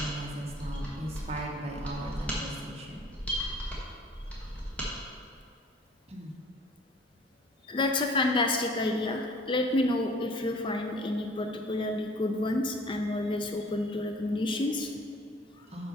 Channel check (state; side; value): normal; both; correlation 0.51